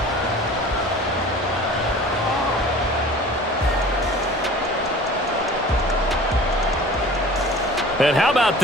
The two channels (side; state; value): both; normal; correlation 0.43